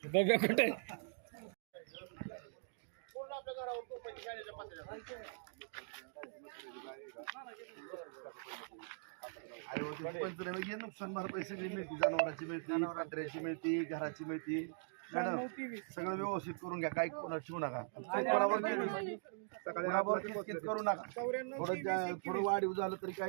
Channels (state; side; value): silent; left; digital silence